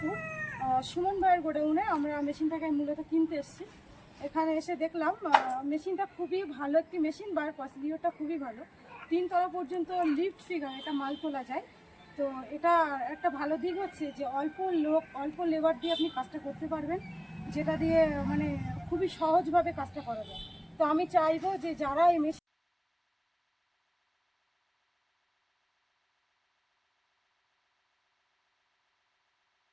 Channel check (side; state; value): both; identical; correlation 1.00